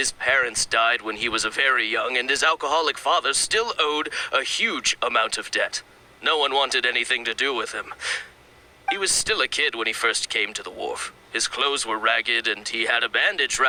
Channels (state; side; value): identical; both; correlation 1.00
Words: parents died when he was very young, and his alcoholic father still owed a huge amount of debt. No one wanted anything to do with him. He was still a kid when he first came to the wharf. His clothes were ragged, and he had a bandage